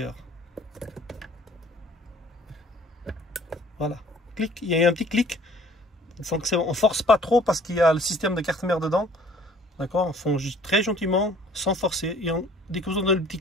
Voilà, clic, il y a un petit clic. On force pas trop parce qu'il y a le système de carte-mère dedans. D'accord, on fonce très gentiment, sans forcer. Et dès que vous entendez le petit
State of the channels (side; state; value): both; normal; correlation 0.54